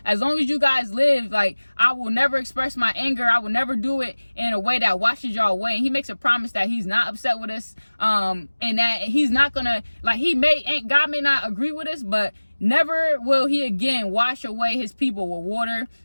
as long as you guys live, like, I will never express my anger. I will never do it in a way that washes y'all away. And he makes a promise that he's not upset with us, and that he's not gonna, like, God may not agree with us, but never will he again wash away his people with water,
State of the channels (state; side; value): inverted; both; correlation -1.00